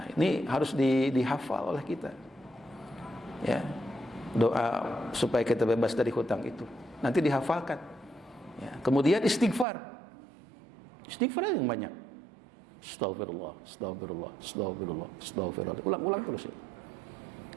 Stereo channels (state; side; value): drops out; left; at 9.7 s